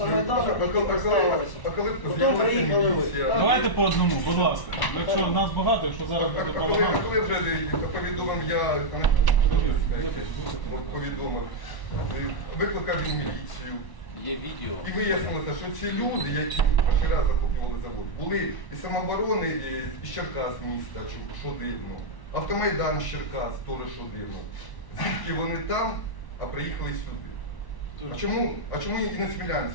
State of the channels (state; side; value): late; right; 1.0 ms